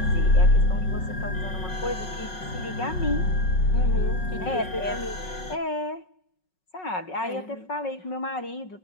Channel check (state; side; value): late; right; 5.4 ms